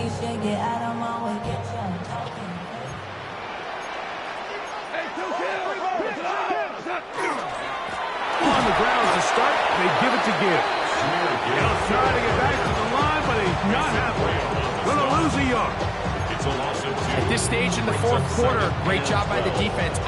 should get out of my way. Get your talking. On the ground to start, they give it to Gibbs. He'll try to get back to the line, but he's not happening. Gonna lose a yard. It's a loss of 2. At this stage in the fourth quarter, great job by the defense,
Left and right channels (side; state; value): both; identical; correlation 1.00